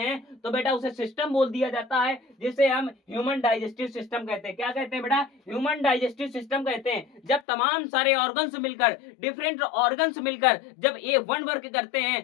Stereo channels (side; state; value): right; drops out; at 7.4 s